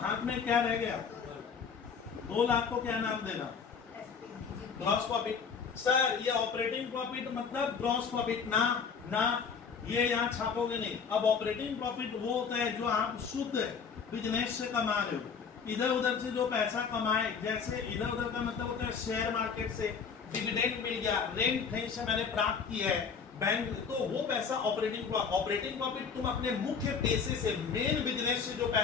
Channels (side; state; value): right; quieter; 6.0 dB